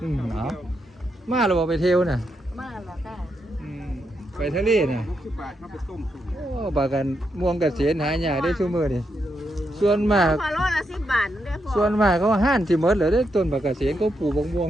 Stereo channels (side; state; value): both; normal; correlation 0.82